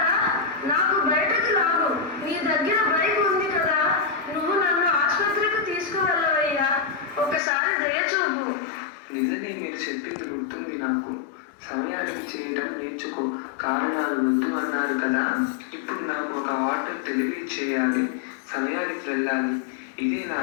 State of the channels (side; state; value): right; drops out; at 7.4 s